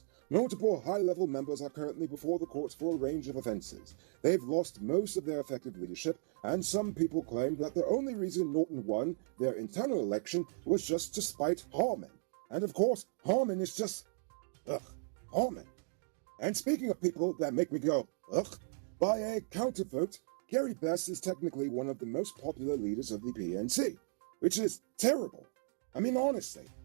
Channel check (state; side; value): silent; left; digital silence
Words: Multiple high-level members are currently before the courts for a range of offenses. They've lost most of their effective leadership, and some people claim that the only reason Norton won their internal election was just to spite Harman. And of course, Harman is just... Harman. And speaking of people that make me go, by a countervote, Gary Bess is technically one of the most popular leaders of the PNC, which is terrible. I mean, honestly.